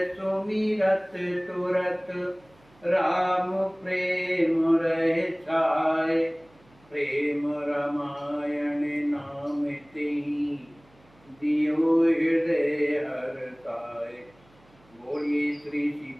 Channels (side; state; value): right; noise; hum, 30 dB below the sound